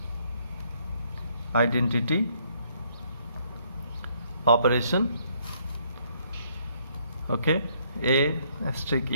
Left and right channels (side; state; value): both; inverted; correlation -0.68